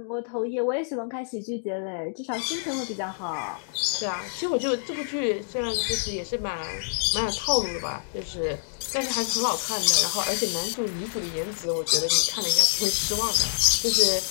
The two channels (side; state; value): right; silent; digital silence